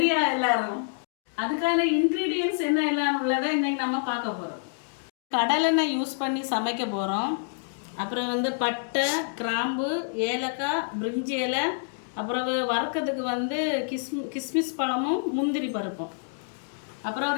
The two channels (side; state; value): right; silent; digital silence